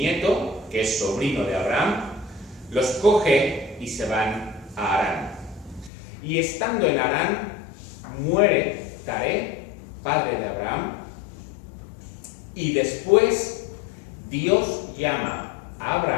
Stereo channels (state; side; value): drops out; right; at 5.9 s